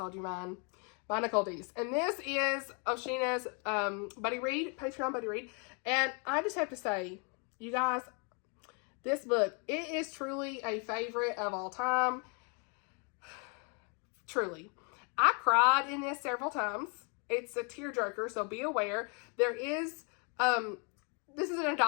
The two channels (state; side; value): quieter; right; 36.3 dB